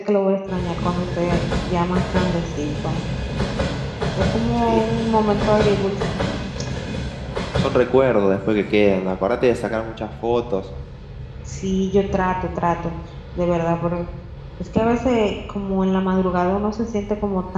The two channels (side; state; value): both; identical; correlation 1.00